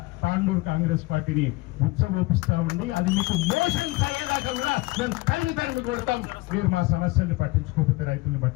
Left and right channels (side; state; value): right; quieter; 21.7 dB